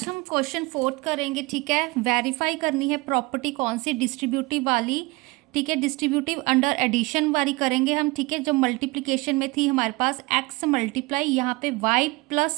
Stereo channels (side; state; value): left; quieter; 24.2 dB